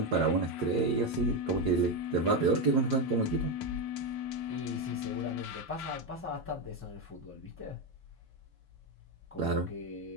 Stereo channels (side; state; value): both; normal; correlation 0.09